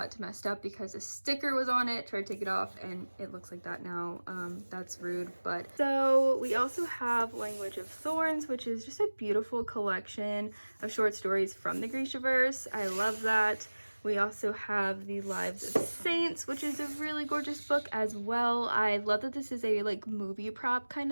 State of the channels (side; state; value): both; inverted; correlation -1.00